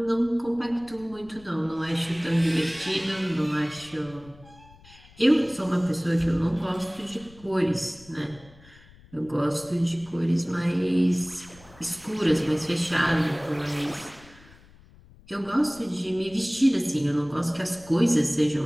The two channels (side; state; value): left; noise; rumble, 24 dB below the sound